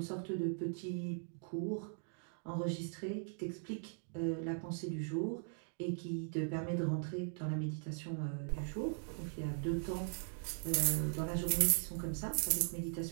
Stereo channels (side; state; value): left; silent; digital silence